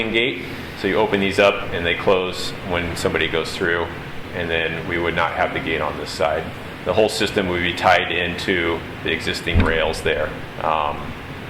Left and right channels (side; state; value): both; identical; correlation 1.00